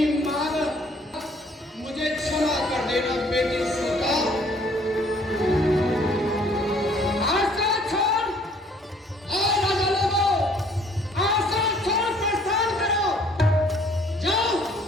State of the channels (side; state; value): both; normal; correlation 0.59